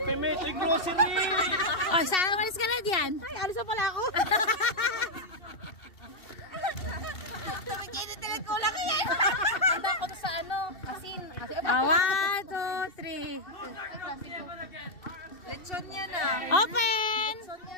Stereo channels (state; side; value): late; right; 2.7 ms